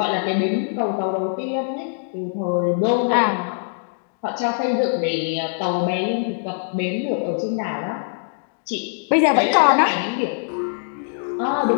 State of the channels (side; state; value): right; silent; digital silence